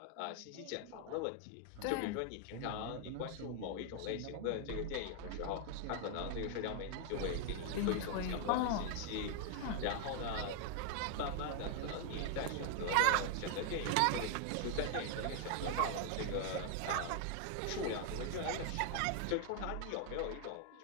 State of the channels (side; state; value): both; different; correlation 0.00